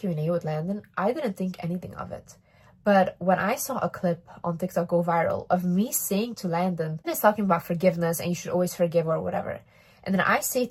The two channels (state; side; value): identical; both; correlation 1.00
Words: with Landon, I didn't think anything of it. But when I saw a clip on TikTok go viral of me saying to Landon, he's talking about forgiveness and you should always forgive or whatever. And then I say